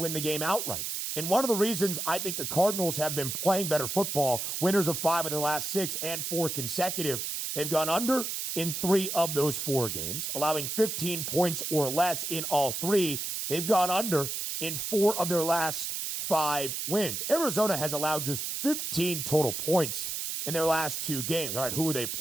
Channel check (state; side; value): noise; right; hiss, 3 dB below the sound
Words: the game outright. And one of the reasons I think the Cardinals have been playing better football, winners of 5 of their last 6 and 4 consecutive, they've gone under in 3 of those 4 games, allowing 15 points or less in all 3. They've gone under in 4 of their last 5 wins. Arizona has allowed just 15 total points in their last 2 games. All right, who are they